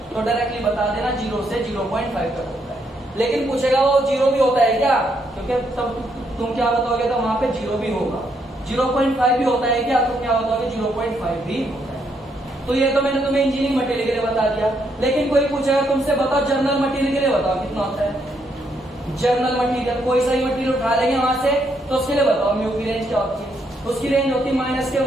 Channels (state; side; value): normal; both; correlation 0.75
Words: तो डायरेक्टली बता देना 0 से 0.5 तक होता है। लेकिन पूछेगा वो 0 भी होता है क्या, क्योंकि तब तुम क्या बताओगे, तो वहां पे 0 भी होगा। 0.5 भी होता है क्या, तो क्या बताओगे, 0.5 भी होता है। तो ये तो मैंने तुम्हें इंजीनियरिंग मटेरियल के लिए बता दिया। लेकिन कोई पूछेगा तुमसे, बताओ जर्नल मटेरियल के लिए बताओ कितना होता है। जर्नल मटेरियल, कोई सा ही मटेरियल उठा लेंगे वहां से, तो उसके लिए बताओ म्यू की रेंज क्या होती है। उसकी रेंज होती है